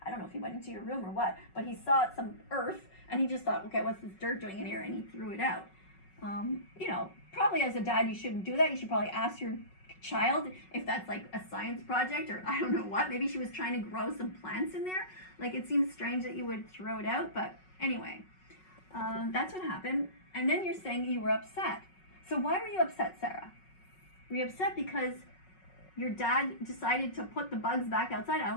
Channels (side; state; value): right; late; 5.4 ms